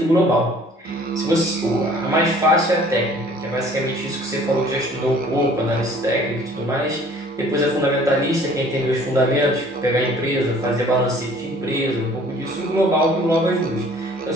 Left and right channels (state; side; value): normal; both; correlation 0.53